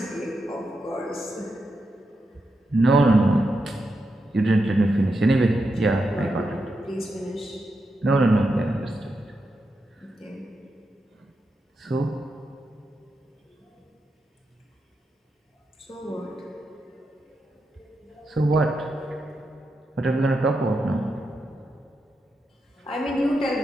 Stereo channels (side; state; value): both; normal; correlation 0.86